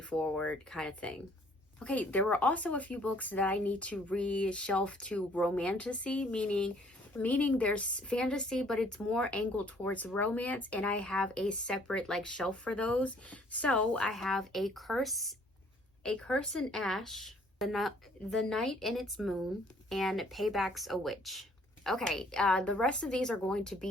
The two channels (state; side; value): normal; both; correlation 0.60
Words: kind of thing. Okay, there were also a few books that I need to reshelf to romantasy, meaning there's fantasy, but it's more angled towards romance, and I have a separate like shelf for those. So I have A Curse in Ash, The Night in Its Moon, and Payback's a Witch. Okay, the rest of these are going to